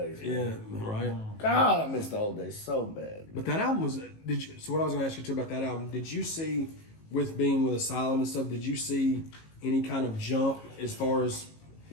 Man. Yeah, right. God, I miss the old days so bad. But that album was. Did you? So what I was going to ask you too about that album? Did you see, with being with Asylum and stuff? Did you see any kind of jump as far as?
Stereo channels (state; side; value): late; right; 18 ms